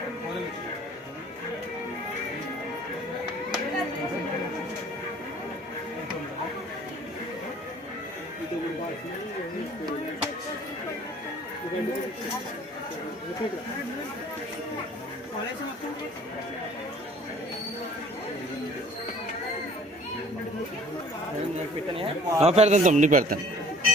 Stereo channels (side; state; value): both; normal; correlation 0.52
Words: పెడతాను తమ్ముడు, పెడతాను.